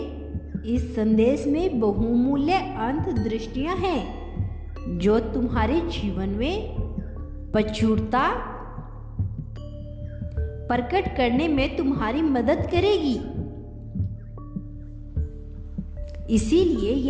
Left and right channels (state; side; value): identical; both; correlation 1.00